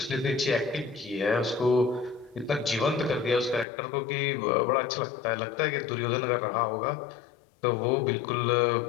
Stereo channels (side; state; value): right; drops out; at 3.7 s